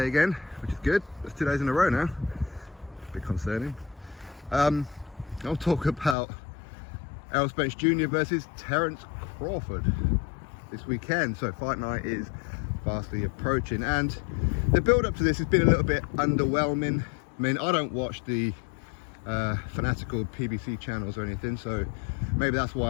again, which is good. It's 2 days in a row now. A bit concerning. I'll talk about Errol Spence Jr. versus Terence Crawford this weekend. So fight night is fastly approaching, and the build up to this has been a little bit underwhelming. I mean, I don't watch the fanatical PBC channels or anything, so maybe that's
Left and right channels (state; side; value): drops out; right; at 6.2 s